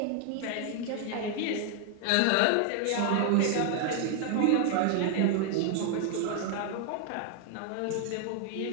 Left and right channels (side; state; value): both; different; correlation 0.00